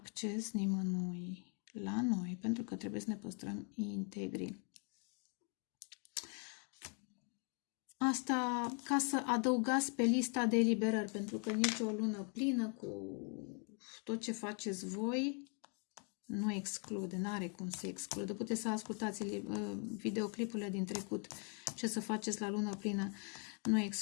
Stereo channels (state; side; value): quieter; right; 39.7 dB